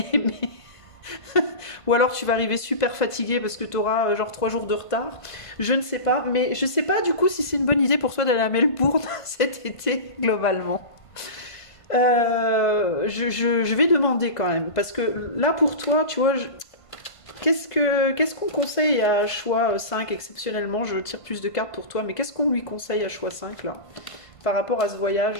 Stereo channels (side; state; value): right; late; 1.5 ms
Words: ou alors tu vas arriver super fatigué parce que tu auras genre 3 jours de retard. Je ne sais pas, mais je sais pas du coup si c'est une bonne idée pour toi d'aller à Melbourne cet été globalement. Je vais demander quand même parce que là pour toi, tu vois, qu'est-ce qu'on conseille à choix 5 exceptionnellement? Je tire plus de cartes pour toi, mais qu'est-ce qu'on lui conseille à choix 5 là par rapport à ce